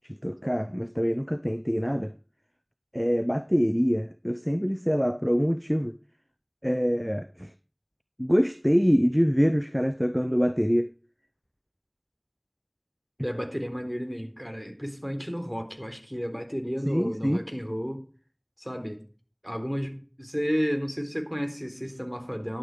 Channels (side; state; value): both; identical; correlation 1.00